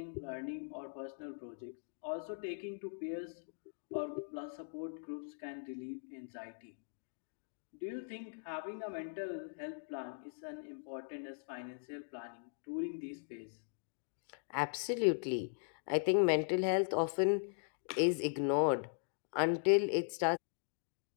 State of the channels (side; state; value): right; silent; digital silence